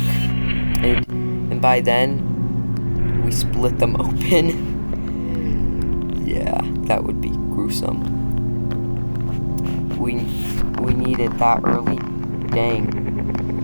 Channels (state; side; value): inverted; both; correlation -1.00